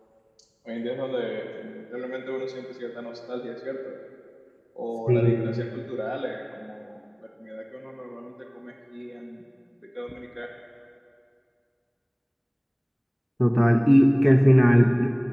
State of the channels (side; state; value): both; identical; correlation 1.00